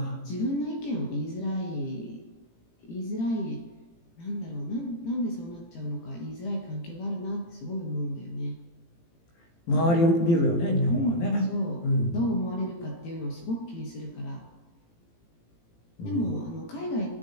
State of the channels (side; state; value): right; late; 18 ms